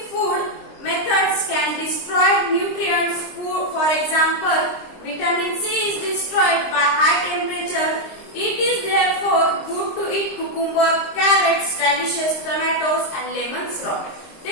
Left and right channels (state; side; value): late; right; 23 ms